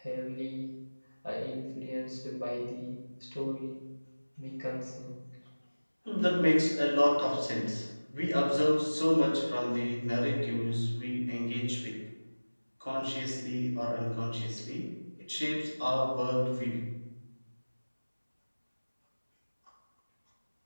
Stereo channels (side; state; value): both; inverted; correlation -1.00